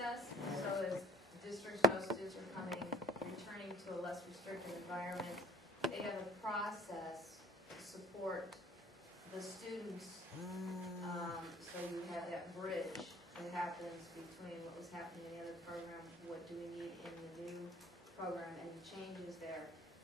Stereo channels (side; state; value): both; normal; correlation 0.51